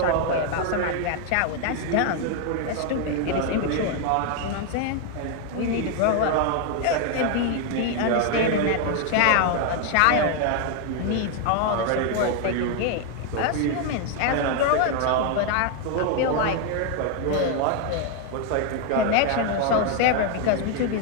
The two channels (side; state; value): both; different; correlation 0.01